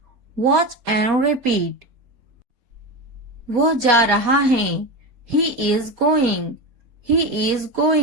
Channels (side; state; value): left; late; 4.2 ms